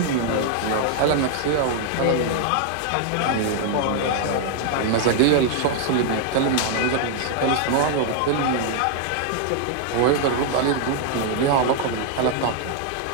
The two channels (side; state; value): both; different; correlation 0.00